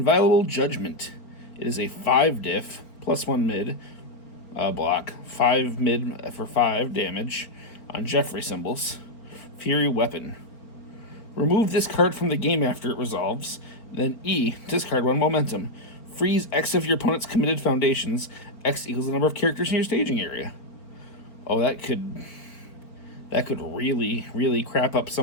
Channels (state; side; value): late; right; 4.5 ms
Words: Judgment. It is a 5-diff, +1 mid block, 5 mid for 5 damage on Jeffrey symbols. Fury Weapon. Remove this card from the game after it resolves. Then E, discard 1 momentum. Freeze X of your opponent's committed foundations. X equals the number of characters in your staging area. Oh, that could really, really crap up